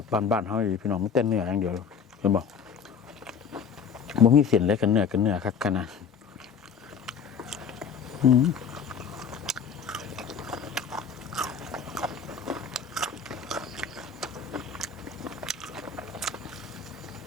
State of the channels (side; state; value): right; quieter; 6.6 dB